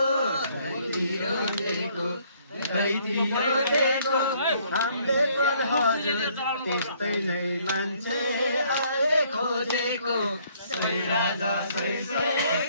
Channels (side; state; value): both; inverted; correlation -0.64